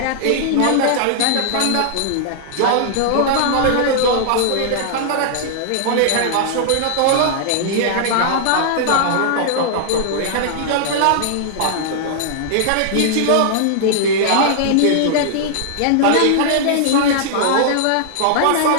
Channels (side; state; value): both; different; correlation -0.01